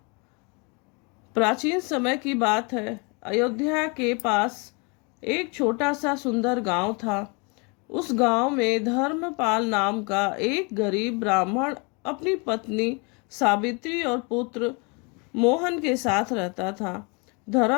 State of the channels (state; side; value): quieter; right; 31.6 dB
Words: प्राचीन समय की बात है। अयोध्या के पास एक छोटा सा सुंदर गांव था। उस गांव में धर्मपाल नाम का एक गरीब ब्राह्मण अपनी पत्नी सावित्री और पुत्र मोहन के साथ रहता था।